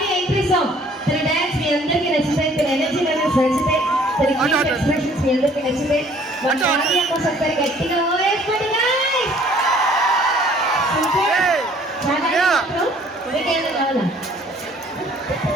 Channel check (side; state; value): both; normal; correlation 0.57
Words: ఎంట్రీ సాంగ్ తన డాన్స్ మీ అందరికీ నచ్చితే, తన ఎనర్జీ లెవెల్స్ నచ్చితే, తన క్యూట్ ఎక్స్ప్రెషన్స్ మీ అందరికీ నచ్చితే మన కావ్య కోసం ఒకసారి గట్టిగా ఓవేసుకోండి గైస్. చాలా మీకేదో కావాలా?